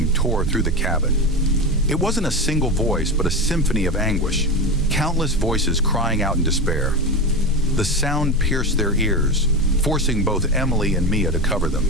tore through the cabin. It wasn't a single voice, but a symphony of anguish, countless voices crying out in despair. The sound pierced their ears, forcing both Emily and Mia to cover them.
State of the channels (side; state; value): both; normal; correlation 0.20